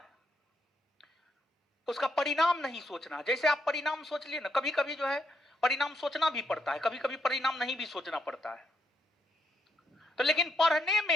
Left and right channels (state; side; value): normal; both; correlation 0.77